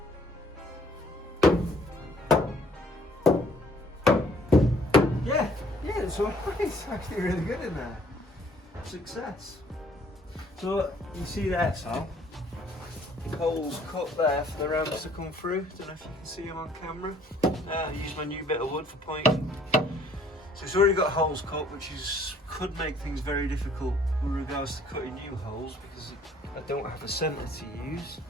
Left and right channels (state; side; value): normal; both; correlation 0.60